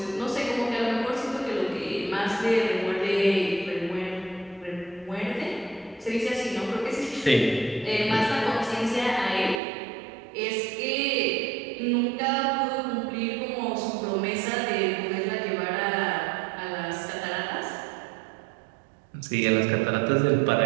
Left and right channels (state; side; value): drops out; left; at 9.6 s